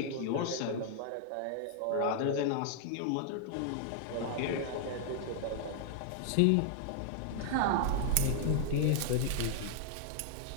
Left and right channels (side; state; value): both; different; correlation -0.01